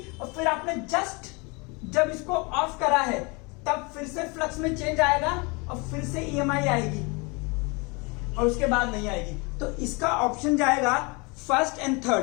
और फिर आपने जस्ट जब इसको ऑफ करा है तब फिर से फ्लक्स में चेंज आएगा और फिर से ईएमआई आएगी और उसके बाद नहीं आएगी। तो इसका ऑप्शन जाएगा फर्स्ट एंड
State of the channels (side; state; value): right; quieter; 29.1 dB